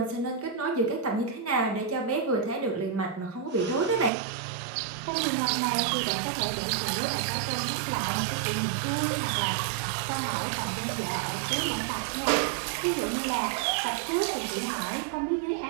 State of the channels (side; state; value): left; drops out; at 4.1 s